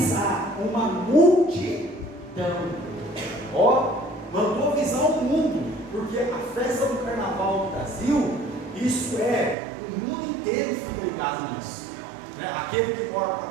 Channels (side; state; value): left; drops out; at 9.6 s